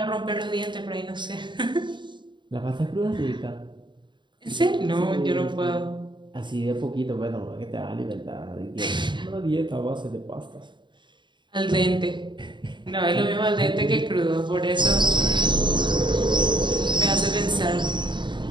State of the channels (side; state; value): left; late; 0.23 ms